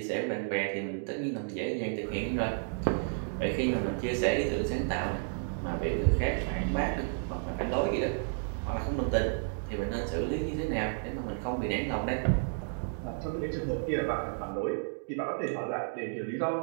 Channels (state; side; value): silent; left; digital silence